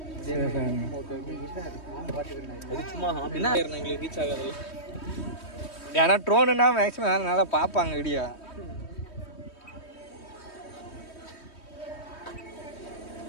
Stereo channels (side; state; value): right; late; 3.2 ms